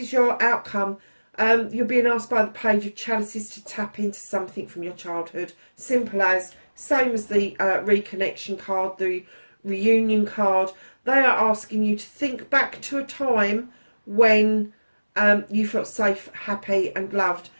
your outcome. You're being asked by the Page of Chalices to tap into something from your childhood. Simple as, same as the reconnection card, the reunion card. They are asking you to think back to a time when you felt safe, happy and loved.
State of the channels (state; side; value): inverted; both; correlation -1.00